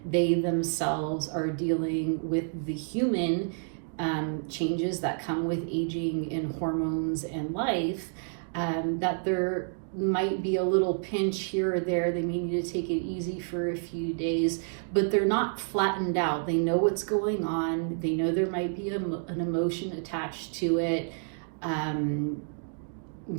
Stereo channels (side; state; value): left; silent; digital silence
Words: they themselves are dealing with the human changes that come with aging and hormones and life, that there might be a little pinch here or there. They may need to take it easy for a few days, but they're not flattened out. They know what's going on. They know there might be an emotion attached to it.